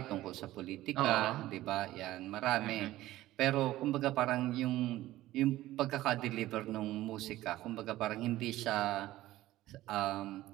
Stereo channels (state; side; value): quieter; left; 15.8 dB